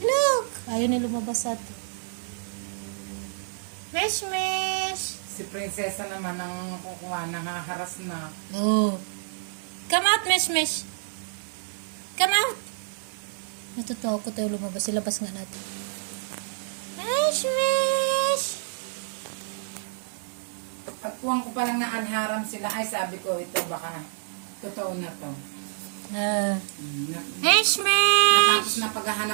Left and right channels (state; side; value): silent; left; digital silence